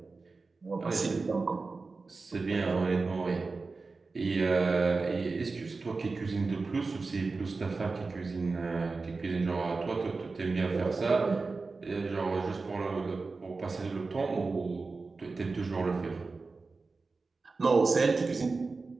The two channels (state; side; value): quieter; left; 4.0 dB